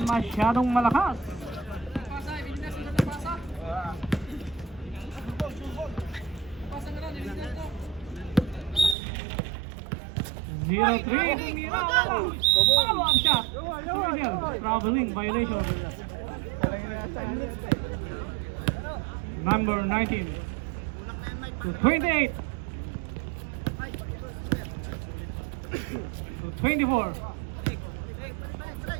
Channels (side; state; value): left; drops out; at 9.0 s